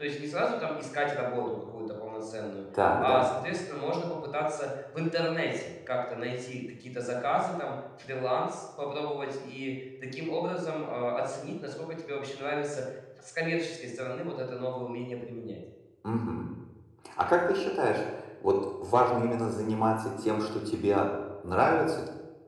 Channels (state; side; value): identical; both; correlation 1.00